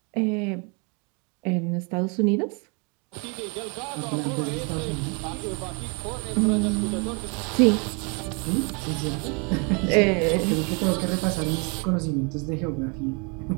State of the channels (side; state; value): left; quieter; 33.0 dB